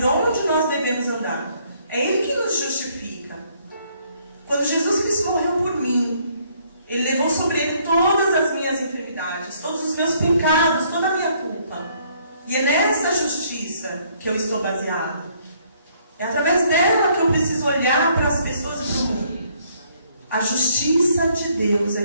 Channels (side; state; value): both; inverted; correlation -0.66